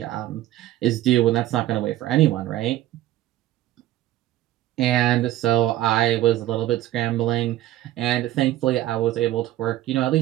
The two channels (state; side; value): quieter; left; 14.3 dB